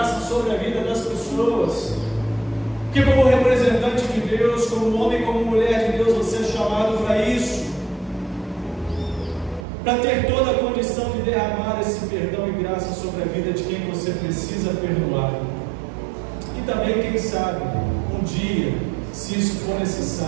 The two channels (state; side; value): drops out; left; at 9.7 s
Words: sobre a vida das pessoas. Que como representante de Deus, como homem, como mulher de Deus, você é chamado para isso, para ter toda a condição de derramar esse perdão e graça sobre a vida de quem você precisa perdoar. E também, quem sabe, um dia, se isso for